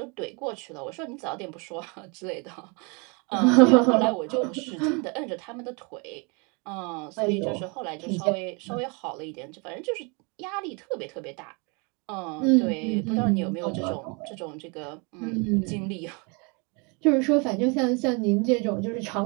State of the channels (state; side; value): quieter; left; 31.8 dB